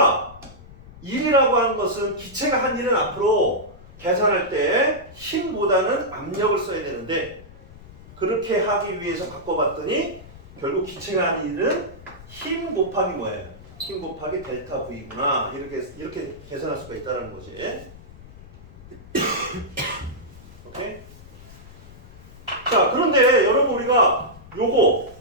일이라고 하는 것은 기체가 한 일은 앞으로 계산할 때 힘보다는 압력을 써야 되는데 그렇게 하기 위해서 바꿔봤더니 결국 기체가 하는 일은 힘 곱하기 뭐예요? 힘 곱하기 델타 V구나. 이렇게 계산할 수가 있다는 거지. 오케이? 자, 그런데 여러분 우리가 요거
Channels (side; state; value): left; noise; rumble, 19 dB below the sound